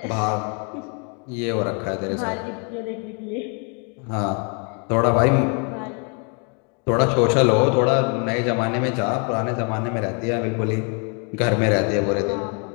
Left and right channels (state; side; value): quieter; right; 37.3 dB